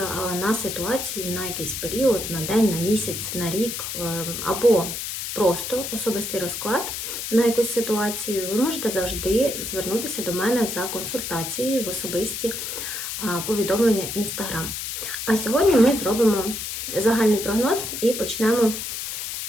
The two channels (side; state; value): left; noise; hiss, 5 dB below the sound